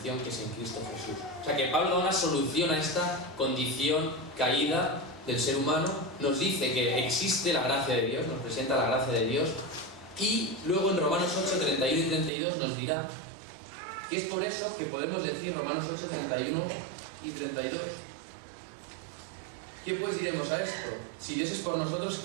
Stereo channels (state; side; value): drops out; left; at 12.3 s